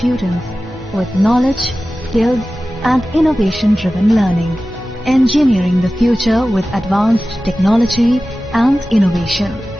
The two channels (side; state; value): both; normal; correlation 0.95